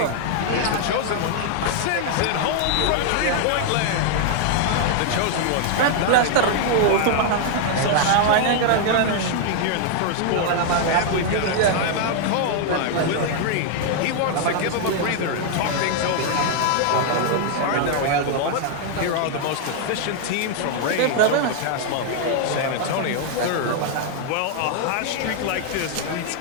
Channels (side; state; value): both; different; correlation 0.00